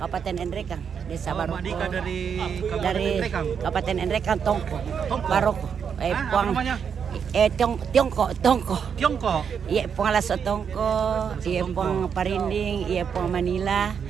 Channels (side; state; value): left; quieter; 7.1 dB